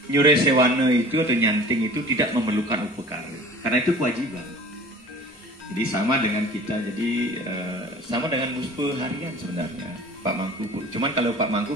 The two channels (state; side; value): normal; both; correlation 0.44